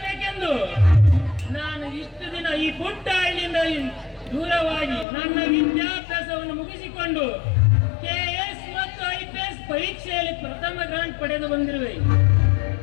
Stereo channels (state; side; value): drops out; right; at 5.1 s